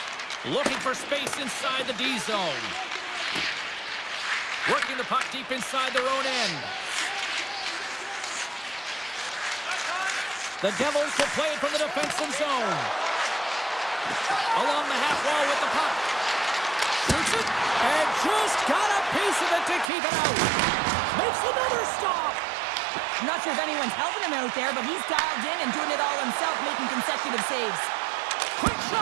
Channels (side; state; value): left; drops out; at 19.9 s